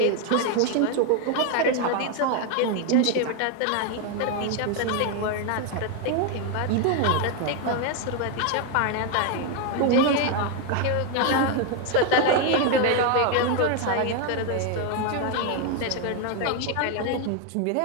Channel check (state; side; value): different; both; correlation 0.01